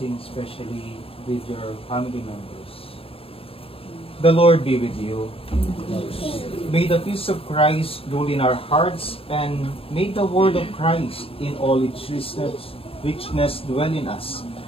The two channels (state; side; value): late; right; 0.27 ms